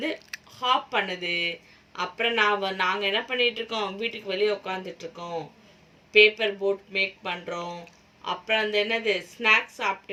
ஹாப் பண்ணுது. அப்புறம் நாங்கள் என்ன பண்ணிகிட்ருக்கோம், வீட்டுக்கு வெளியே உட்காந்துட்ருக்கோம், பேப்பர் போட் மேக் பண்ணுறோம். அப்புறம் அந்த என்னது ஸ்நாக்ஸ்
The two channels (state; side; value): identical; both; correlation 1.00